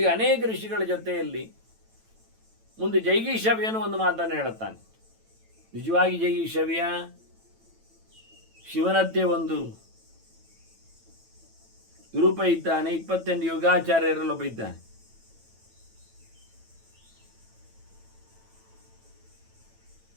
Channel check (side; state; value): left; late; 9.0 ms